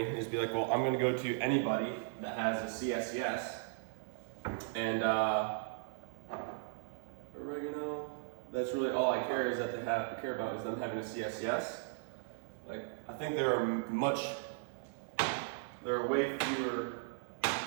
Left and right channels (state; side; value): silent; left; digital silence